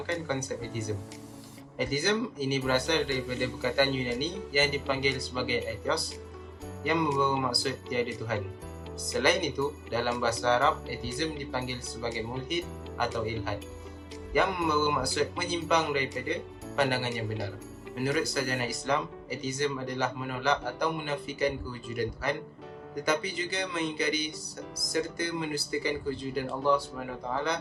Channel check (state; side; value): identical; both; correlation 1.00